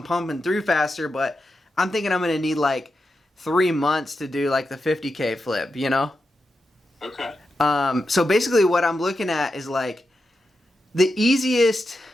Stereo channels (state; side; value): normal; both; correlation 0.88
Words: pumping through faster, but I'm thinking I'm going to need like 3 months to do like the 50K flip, you know? Okay. So basically what I'm looking at is like the easiest